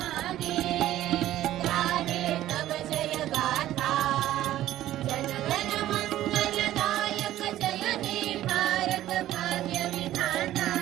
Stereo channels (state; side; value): quieter; left; 13.7 dB